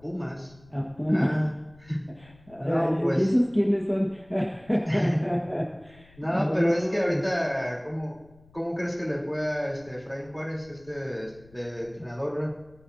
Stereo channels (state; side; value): noise; left; rumble, 26 dB below the sound